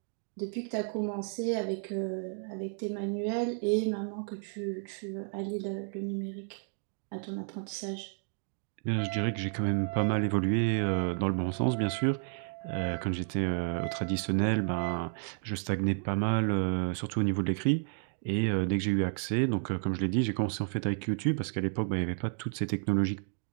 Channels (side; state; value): left; silent; 56 dB below the other